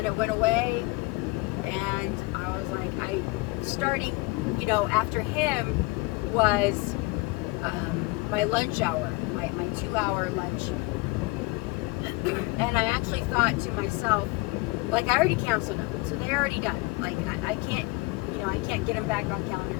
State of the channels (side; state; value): right; quieter; 24.5 dB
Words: it went away. And I was like, starting, after him was my lunch hour, my 2-hour lunch. And I actually thought to myself, like, I already canceled them, so they're already done. Like, I can't, I can't get them back on calendar,